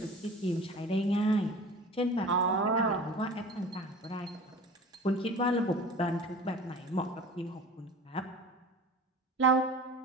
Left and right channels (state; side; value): normal; both; correlation 0.39